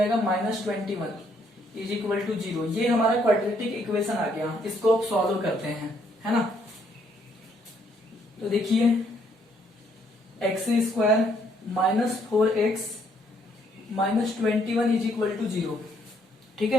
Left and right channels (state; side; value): normal; both; correlation 0.69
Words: माइनस 21 इज इक्वल टू 0। ये हमारा क्वाड्रेटिक इक्वेशन आ गया, इसको अब सॉल्व करते हैं, है ना। तो देखिए x square minus 4x minus 21 is equal to 0। ठीक